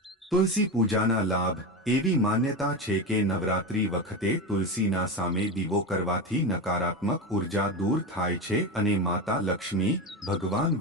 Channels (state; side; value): normal; both; correlation 0.20